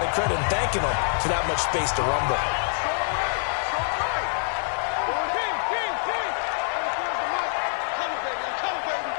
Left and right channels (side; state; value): right; silent; digital silence